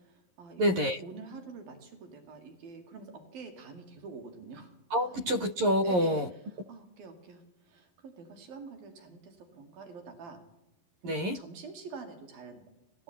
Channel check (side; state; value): left; late; 11 ms